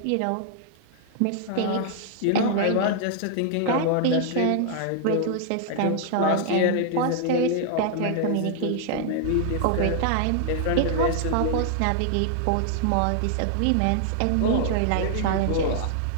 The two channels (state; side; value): different; both; correlation -0.01